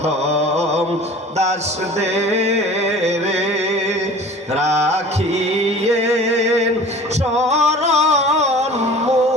দাসদের, রাখিয়েন শরণ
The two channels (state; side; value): normal; both; correlation 0.43